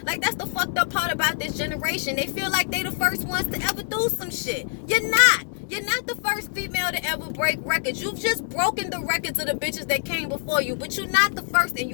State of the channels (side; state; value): right; silent; digital silence